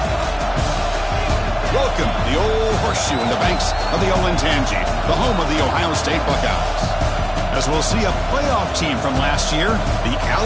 Welcome to the old horseshoe in the banks of the Olentangy, the home of the Ohio State Buckeyes. As we'll see a playoff team from last year, the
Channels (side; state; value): both; identical; correlation 1.00